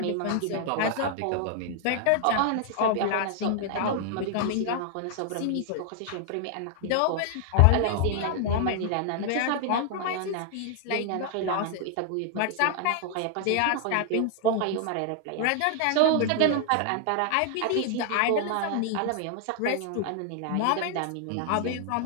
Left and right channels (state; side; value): different; both; correlation 0.00